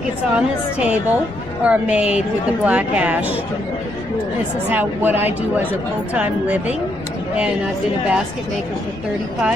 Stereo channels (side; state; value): left; noise; rumble, 20 dB below the sound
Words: on this table are made with the black ash. This is what I do as a full-time living, and I've been a basket maker for